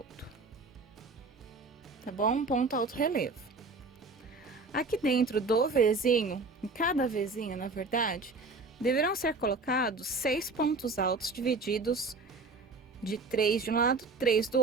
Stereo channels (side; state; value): left; quieter; 3.6 dB